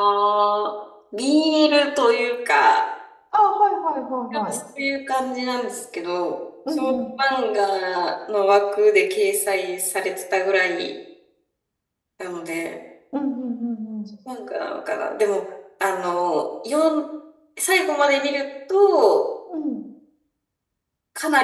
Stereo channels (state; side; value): identical; both; correlation 1.00